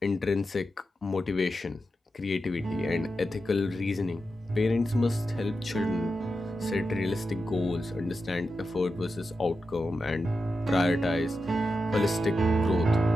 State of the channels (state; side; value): normal; both; correlation 0.89